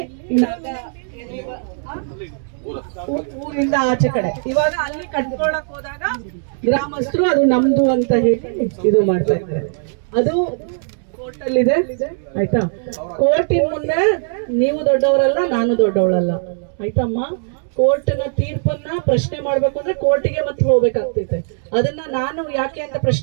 ಊರಿಂದ ಆಚೆ ಕಡೆ. ಇವಾಗ ಅಲ್ಲಿ ಕಟ್ಕೊಳಕ್ ಹೋದಾಗ ಗ್ರಾಮಸ್ಥರು ಅದು ನಮ್ದು ಅಂತ ಹೇಳಿ ಇದು ಮಾಡ್ತಾ ಇದ್ದಾರೆ. ಅದು ಕೋರ್ಟ್ ಅಲ್ಲಿ ಇದೆ, ಆಯ್ತಾ? ಕೋರ್ಟಿನ ಮುಂದೆ ನೀವು ದೊಡ್ಡವರಲ್ಲ, ನಾನು ದೊಡ್ಡವಳಲ್ಲ, ಆಯ್ತಮ್ಮ? ಕೋರ್ಟ್ನ ತೀರ್ಪನ್ನ ಪ್ರಶ್ನೆ ಮಾಡ್ಬೇಕು ಅಂದ್ರೆ ಕೋರ್ಟಿಗೆ ಮತ್ತೆ ಹೋಗ್ಬೇಕಾಗ್ತೈತೆ. ಅದನ್ನ ನಾನು ಯಾಕೆ ಅಂತ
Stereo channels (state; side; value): silent; left; 66 dB below the other